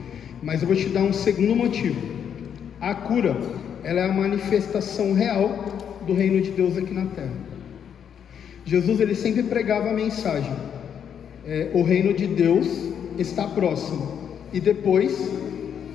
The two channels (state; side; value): quieter; right; 8.3 dB